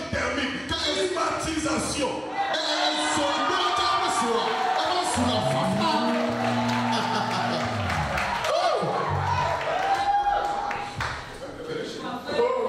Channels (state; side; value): identical; both; correlation 1.00